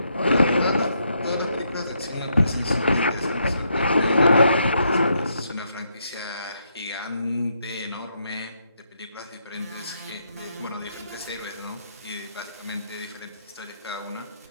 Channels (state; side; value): inverted; both; correlation -0.77